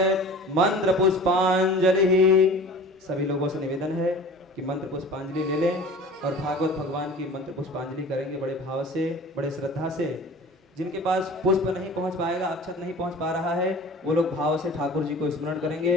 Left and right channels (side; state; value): both; normal; correlation 0.41